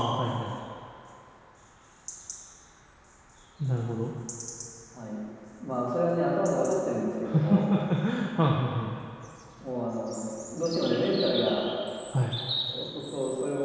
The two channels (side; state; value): both; identical; correlation 1.00